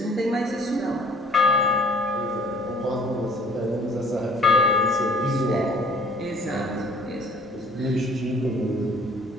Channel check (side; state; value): both; normal; correlation 0.54